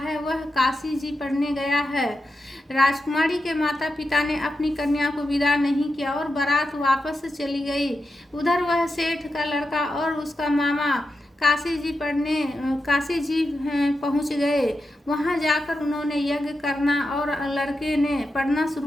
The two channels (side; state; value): both; normal; correlation 0.88